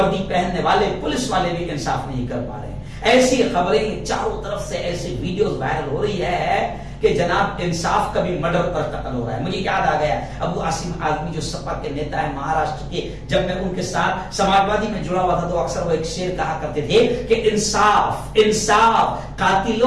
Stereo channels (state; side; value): identical; both; correlation 1.00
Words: پہننے والے پولیس والے بھی انصاف نہیں کر پا رہے. ایسی خبریں چاروں طرف سے, ایسی ویڈیوز وائرل ہو رہی ہے کہ جناب انصاف کا بھی مرڈر پر قتل ہو رہا ہے. مجھے یاد آ گیا ابو عاصم آزمی جو سپا کے نیتا ہے مہاراشٹر کے, جب میں ان کے ساتھ سماجوادی میں جڑا ہوا تھا تو اکثر وہ ایک شعر کہا کرتے تھے کہ انصاف